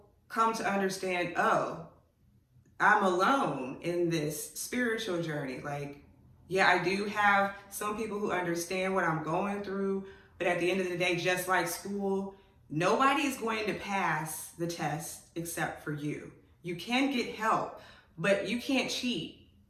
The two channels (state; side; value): identical; both; correlation 1.00